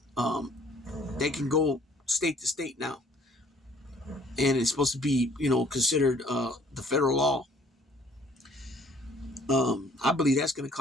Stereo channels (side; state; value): both; normal; correlation 0.59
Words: they can go state to state now. And it's supposed to be, considered the federal law. I believe that's going to